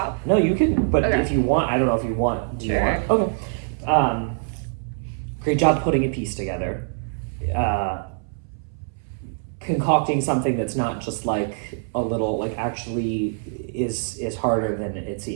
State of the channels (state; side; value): silent; left; 60 dB below the other